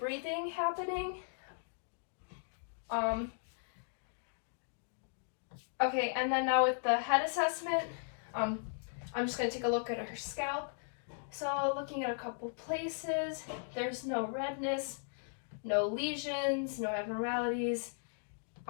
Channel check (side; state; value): right; silent; digital silence